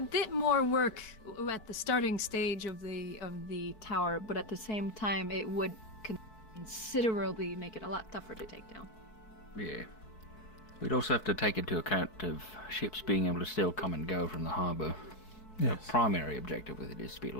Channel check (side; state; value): right; late; 4.6 ms